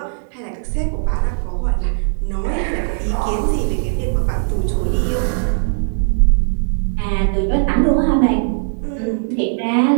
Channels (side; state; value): left; silent; 61 dB below the other